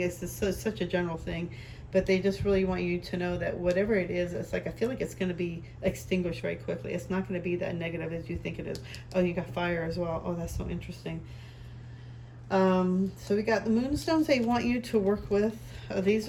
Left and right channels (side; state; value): both; identical; correlation 1.00